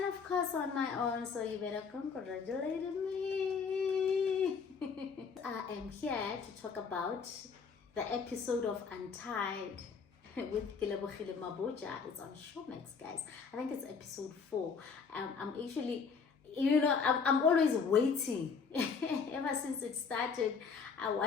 of course on my own, so you better congratulate me. I am here to talk about the episode of Untied with Relebogile Mabotja. It's on Showmax, guys. I think it's episode 4. I'm actually, I'm always waiting. Ever since it started, I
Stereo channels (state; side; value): quieter; right; 5.6 dB